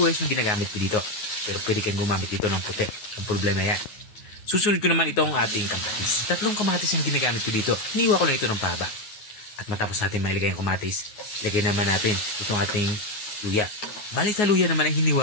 yung ginagamit ko dito. Pero pwede kang gumamit dito ng puti. Ang problema yan. Susunod ko naman itong ating kamatis. 3 kamatis ang ginagamit ko dito. Hiniwa ko lang ito ng pahaba. At matapos natin mailagay ang kamatis, lagay naman natin itong ating luya. Bali sa luya naman ay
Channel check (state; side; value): late; right; 9.5 ms